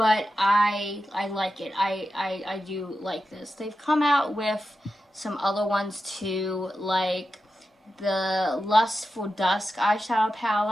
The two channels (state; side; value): normal; both; correlation 0.91